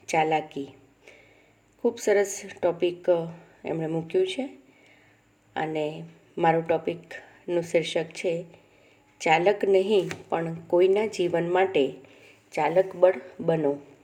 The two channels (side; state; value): both; identical; correlation 1.00